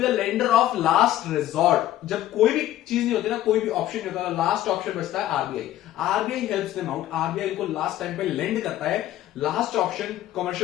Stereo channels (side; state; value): right; quieter; 13.6 dB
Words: the lender of last resort. जब कोई भी चीज नहीं होती ना, कोई भी ऑप्शन नहीं होता, लास्ट ऑप्शन बचता है RBI. RBI helps them out, RBI को लास्ट टाइम पे लेंड करता है। लास्ट ऑप्शन